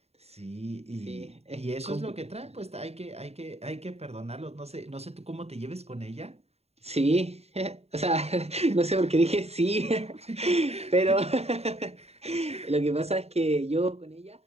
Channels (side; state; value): left; late; 0.30 ms